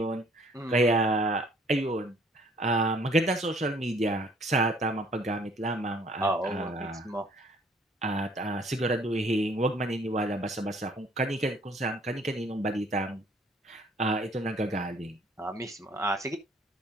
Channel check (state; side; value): normal; both; correlation 0.59